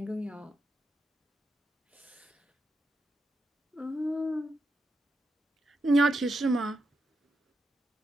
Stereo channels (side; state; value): both; normal; correlation 0.85